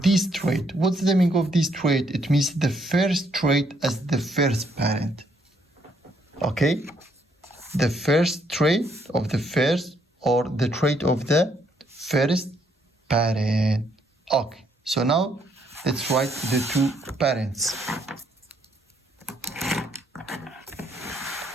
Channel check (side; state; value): both; normal; correlation 0.71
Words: trait. What's the meaning of this trait? It means the first trait as the first parent. Okay? The first trait of the first or the trait of the first parent. Okay, so now let's write the two parents.